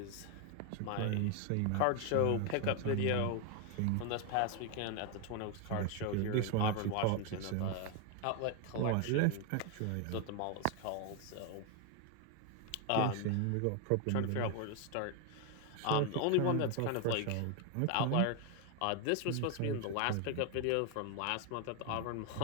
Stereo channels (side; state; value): both; different; correlation 0.01